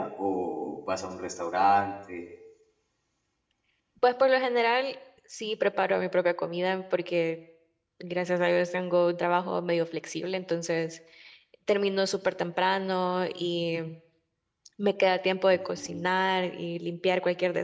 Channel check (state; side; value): identical; both; correlation 1.00